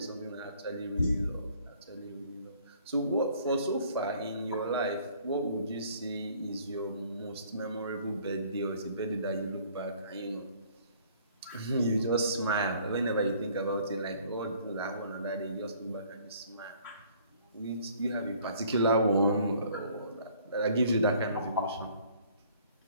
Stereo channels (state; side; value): inverted; both; correlation -0.58